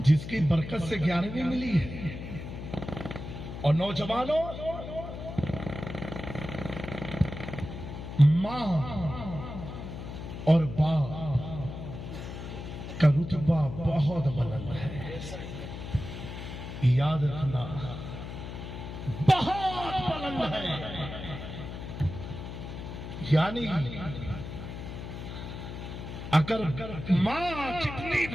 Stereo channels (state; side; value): noise; left; hum, 9 dB below the sound